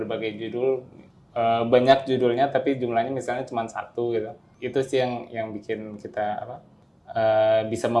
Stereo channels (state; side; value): identical; both; correlation 1.00